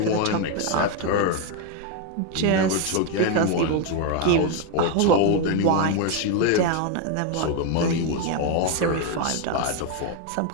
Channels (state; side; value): different; both; correlation 0.01